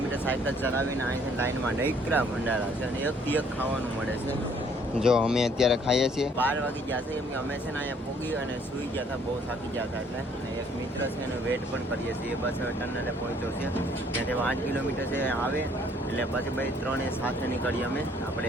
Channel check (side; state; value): both; normal; correlation 0.62